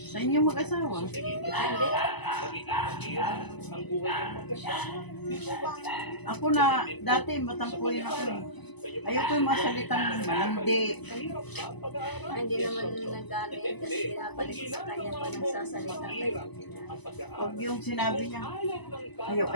Sa inyong mag-asawa. tingin niyo, Hindi. magiging mahirap ang buhay ng mag-asawa. Di po ba? Ako na, dati matampuin ako eh. Ayoko yung mga salitang malandi. Mahirap ba ang pag-aaral? Hindi naman nag-ano yan kasi pinapalik ko sa kanya pa nagsasalita kayo. Ang pag-aaral. Huwag yung sinabi niya, Ayaw ng bata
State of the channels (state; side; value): late; right; 1.0 ms